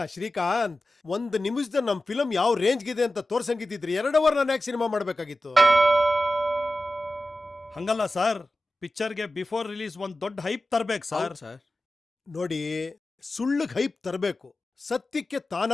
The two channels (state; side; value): normal; both; correlation 0.94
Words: ಶ್ರೀಕಾಂತ್, 1 ನಿಮಿಷದಲ್ಲಿ ನಮ್ಮ ಫಿಲಮ್ ಯಾವ ರೇಂಜ್ಗಿದೆ ಅಂತ ತೋರ್ಸಂಗಿದ್ದಿದ್ರಿ 2 ಅವರ್ ನಾನು ಯಾಕೆ ಸಿನಿಮಾ ಮಾಡಬೇಕಾಗಿತ್ತು? ಹಂಗಲ್ಲ ಸರ್, ಪಿಕ್ಚರ್ಗೆ ಬಿಫೋರ್ ರಿಲೀಸ್ ಒಂದು ದೊಡ್ಡ ಹೈಪ್ ತರಬೇಕು ಸರ್. ಸರ್ ನೋಡಿ, ಸುಳ್ಳಿಗೆ ಹೈಪ್ ತರಬೇಕು, ಸತ್ಯಕ್ಕೆ